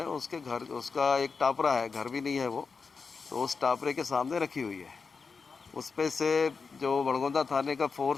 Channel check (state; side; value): quieter; right; 5.0 dB